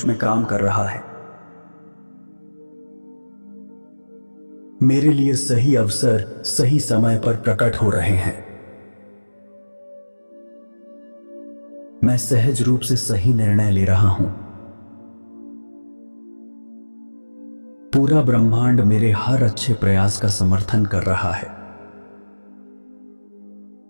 में काम कर रहा है। मेरे लिए सही अवसर सही समय पर प्रकट हो रहे हैं। मैं सहज रूप से सही निर्णय ले रहा हूं। पूरा ब्रह्मांड मेरे हर अच्छे प्रयास का समर्थन कर रहा है।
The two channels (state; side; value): inverted; both; correlation -1.00